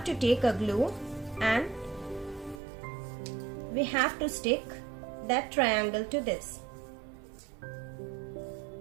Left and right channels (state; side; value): drops out; left; at 2.6 s